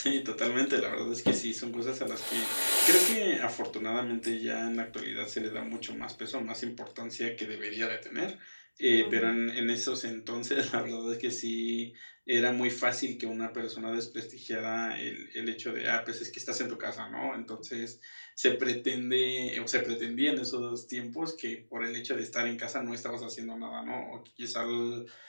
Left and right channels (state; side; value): inverted; both; correlation -1.00